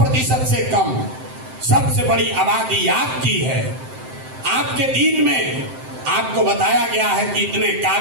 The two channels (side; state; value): left; late; 7.7 ms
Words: से कम। सबसे बड़ी आबादी आपकी है। आपके दीन में आपको बताया गया है कि इतने